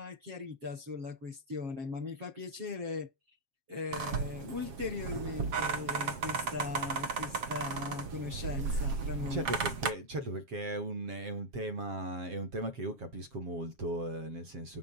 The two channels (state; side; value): late; left; 7.4 ms